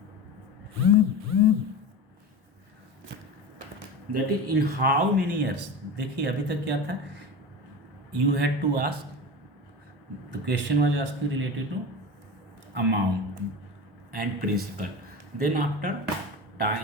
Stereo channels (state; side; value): normal; both; correlation 0.28